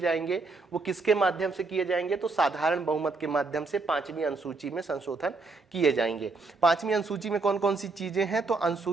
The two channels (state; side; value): quieter; left; 3.7 dB